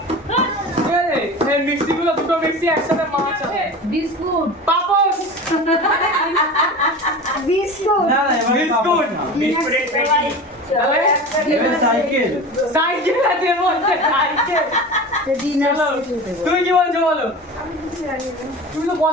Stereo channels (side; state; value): both; normal; correlation 0.32